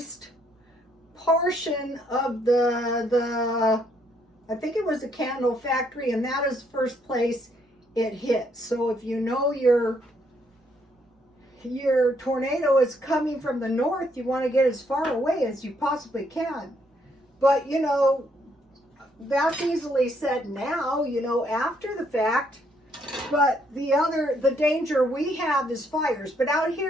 portion of the I think it was the candle factory, and that is the first place it hit. So if you know your tornado is coming from the north, you want to get as far away as you possibly can. But you know, that's easily said now, you know, after the fact. But the danger we have is fires. But out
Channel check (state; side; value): normal; both; correlation 0.71